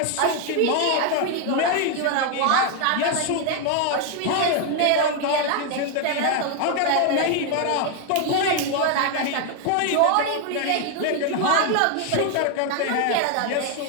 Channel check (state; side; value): different; both; correlation 0.01